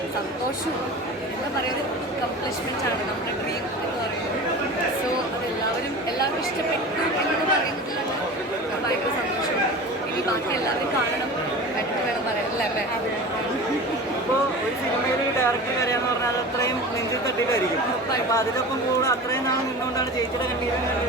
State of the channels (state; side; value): normal; both; correlation 0.34